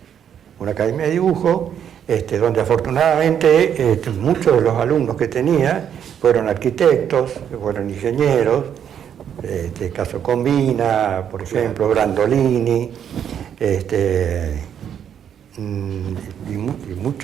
Una academia de dibujo, donde afortunadamente muchos de los alumnos que tenía fueron arquitectos, fueron ingenieros, caso Combina, por ejemplo, Brandolini, y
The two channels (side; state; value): left; quieter; 8.8 dB